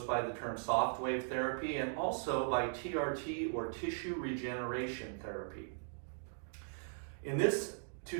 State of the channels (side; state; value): left; silent; digital silence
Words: by the term Softwave therapy and also by TRT or tissue regeneration therapy. In this